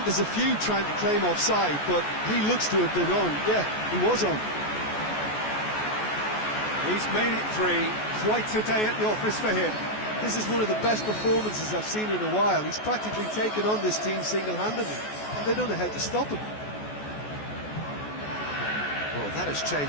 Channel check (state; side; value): late; right; 14 ms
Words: there's a few trying to claim offside, but he looks to have been on. Yeah, he was on. He's made it 3. Quite a day at the office for him. This is one of the best performances I've seen in a while. He's practically taken on this team single-handedly, and they don't know how to stop him. Well, that has